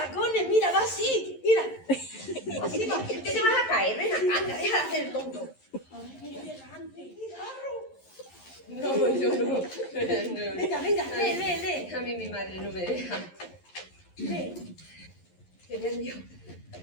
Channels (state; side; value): late; right; 11 ms